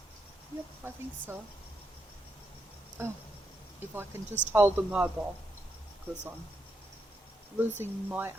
Yep, I think so. Oh, if I can just hold the mobile, because I'm losing my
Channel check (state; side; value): normal; both; correlation 0.81